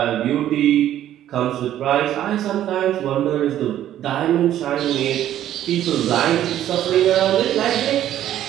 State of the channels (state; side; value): quieter; left; 11.9 dB